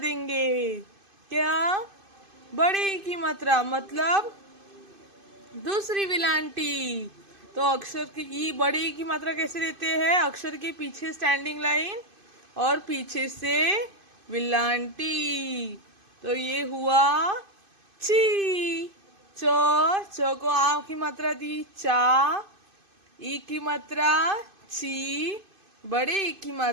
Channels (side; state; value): left; late; 2.5 ms